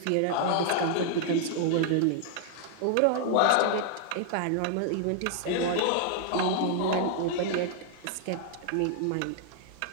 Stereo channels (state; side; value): different; both; correlation -0.01